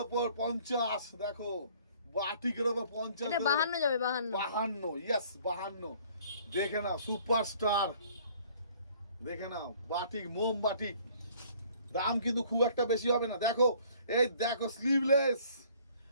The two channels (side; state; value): both; inverted; correlation -0.56